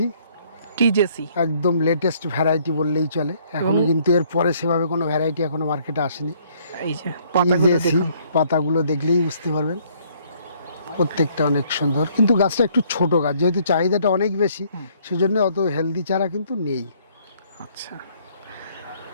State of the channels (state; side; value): inverted; both; correlation -0.64